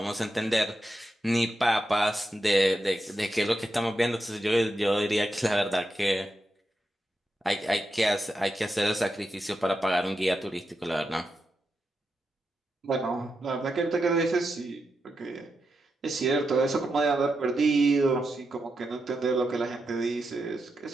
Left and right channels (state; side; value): normal; both; correlation 0.87